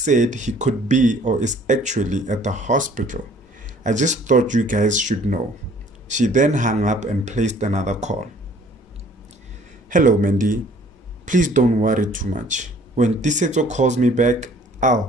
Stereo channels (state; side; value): normal; both; correlation 0.55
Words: said he could be or is actually at the hospital. I just thought you guys should know. She then hung up and placed another call. Hello, Mandy. Please don't worry too much. When Tisetso calls me back,